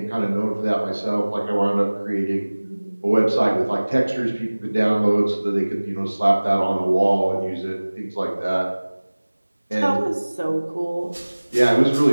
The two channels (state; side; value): inverted; both; correlation -1.00